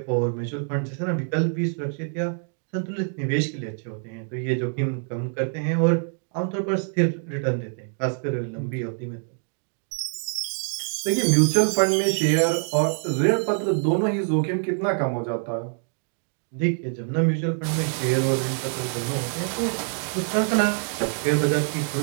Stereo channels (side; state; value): left; silent; 55 dB below the other